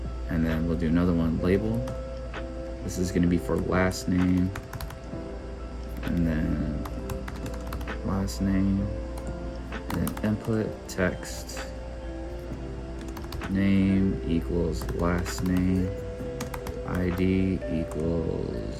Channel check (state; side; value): identical; both; correlation 1.00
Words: And then we'll do another one, label. This is going to be for last name. And then last name. And then input text. Name equals last name. ID